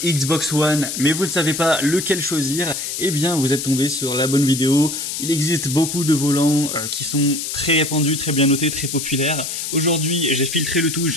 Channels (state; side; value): noise; left; hiss, 5 dB below the sound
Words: Xbox One, mais vous ne savez pas lequel choisir, eh bien vous êtes tombé sur la bonne vidéo. Il existe beaucoup de volants qui sont très répandus, très bien notés, très populaires. Aujourd'hui, j'ai filtré le tout,